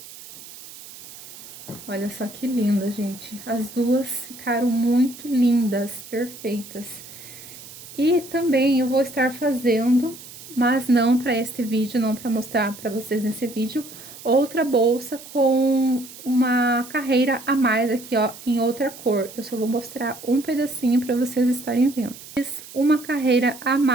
Olha só que linda, gente. As duas ficaram muito lindas, perfeitas. E também eu vou estar fazendo, mas não para este vídeo, não para mostrar para vocês nesse vídeo, outra bolsa com uma carreira a mais aqui, ó, em outra cor. Eu só vou mostrar um pedacinho para vocês estarem vendo. Fiz uma carreira a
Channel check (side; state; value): right; noise; hiss, 16 dB below the sound